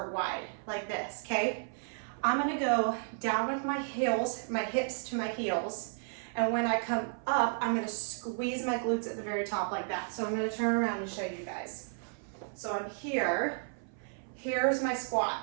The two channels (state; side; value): silent; left; 56 dB below the other